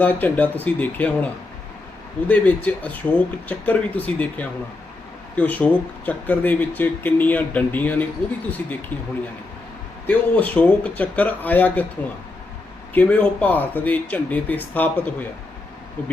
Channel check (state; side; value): quieter; right; 3.2 dB